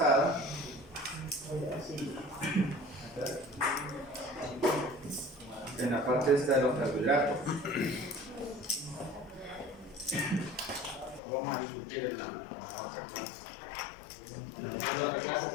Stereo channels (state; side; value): drops out; right; at 11.2 s